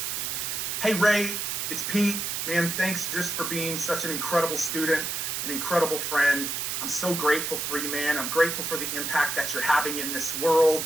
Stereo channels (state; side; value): noise; right; hiss, 2 dB below the sound